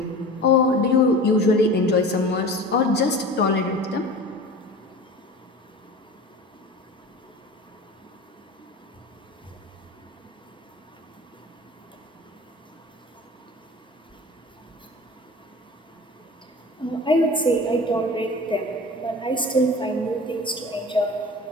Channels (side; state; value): both; normal; correlation 0.37